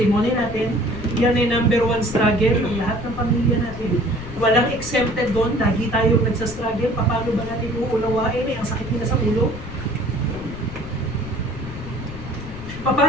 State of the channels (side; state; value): left; noise; rumble, 12 dB below the sound